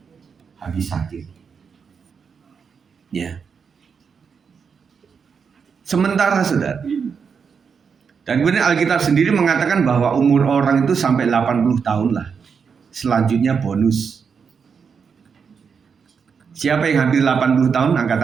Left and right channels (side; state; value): left; quieter; 6.2 dB